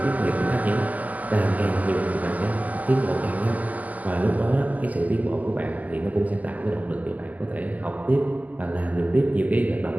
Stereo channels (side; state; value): left; late; 0.078 ms